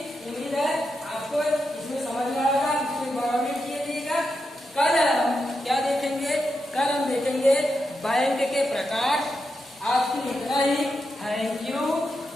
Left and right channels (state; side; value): normal; both; correlation 0.86